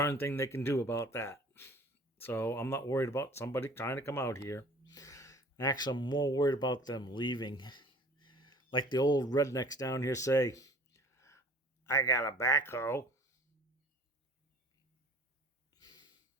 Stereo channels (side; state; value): both; normal; correlation 0.47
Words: thing they can do about that. So I'm not worried about somebody trying to come out here. Actually, I'm more worried about them leaving. Like the old rednecks down here say, I got a backhoe.